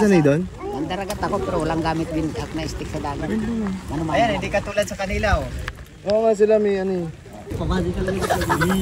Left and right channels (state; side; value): identical; both; correlation 1.00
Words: sanay doon? Nandaragat ako pero walang gamit din at may stick sa dagat. Mano-mano. Ayan, hindi katulad sa kanila, oh. Oo nga sila may ano eh. Pamadi ka talaga.